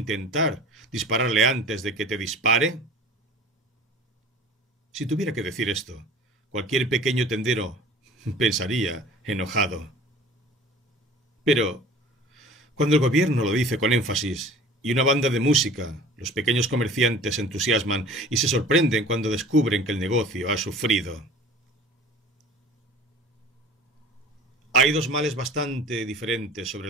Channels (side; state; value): both; normal; correlation 0.43